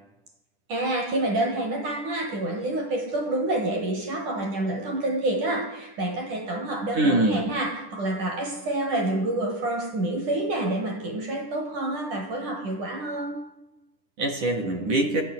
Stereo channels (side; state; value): left; late; 10 ms